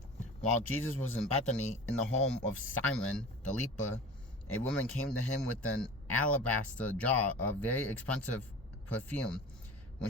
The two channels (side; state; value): both; normal; correlation 0.37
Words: While Jesus was in Bethany, in the home of Simon the leper, a woman came to him with an alabaster jar of very expensive perfume.